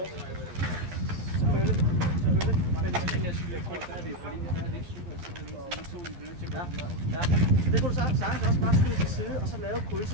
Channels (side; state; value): left; late; 11 ms